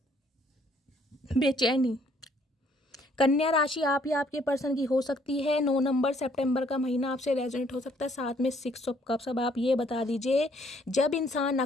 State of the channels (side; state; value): both; normal; correlation 0.64